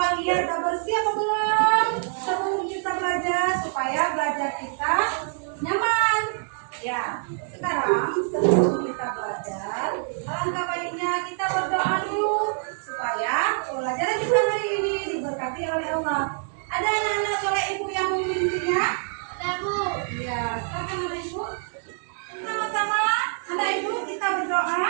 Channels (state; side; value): silent; left; 58 dB below the other